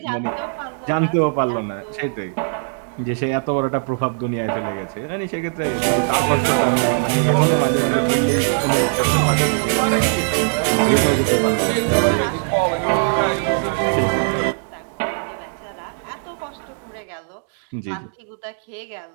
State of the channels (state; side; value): silent; left; 65 dB below the other